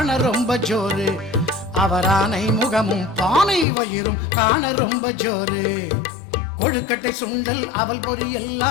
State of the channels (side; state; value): right; drops out; at 3.7 s